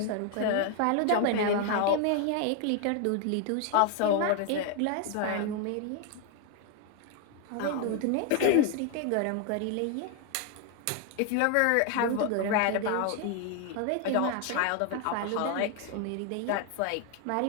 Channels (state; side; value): different; both; correlation 0.00